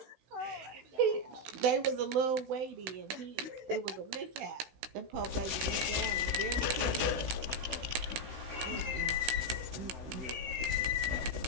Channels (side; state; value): left; late; 16 ms